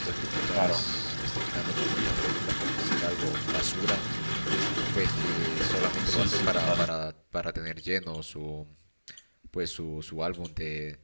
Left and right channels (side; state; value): both; inverted; correlation -1.00